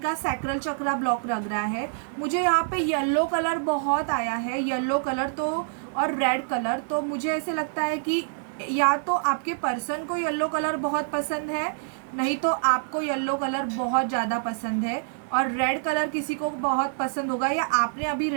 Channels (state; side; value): silent; left; digital silence